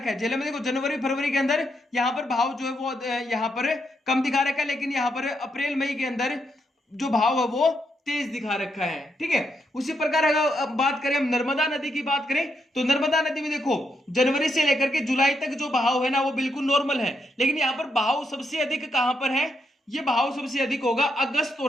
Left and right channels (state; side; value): normal; both; correlation 0.80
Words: है, झेलम में देखो जनवरी, फरवरी के अंदर यहाँ पर भाव जो है वो यहाँ पर कम दिखा रखा है, लेकिन यहाँ पर अप्रैल, मई के अंदर जो भाव है वो तेज दिखा रखा है। ठीक है, उसी प्रकार अगर बात करें हम नर्मदा नदी की बात करें तो नर्मदा नदी में देखो जनवरी से लेकर के जुलाई तक जो बहाव है ना वो बिल्कुल नॉर्मल है, लेकिन यहाँ पर बहाव सबसे अधिक कहां पर है, ये बहाव सबसे अधिक होगा अगस्त